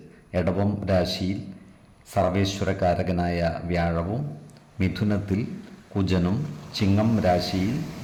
എടവം രാശിയിൽ സർവേശ്വരകാരകനായ വ്യാഴവും, മിഥുനത്തിൽ കുജനും, ചിങ്ങം രാശിയിൽ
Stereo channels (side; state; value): both; identical; correlation 1.00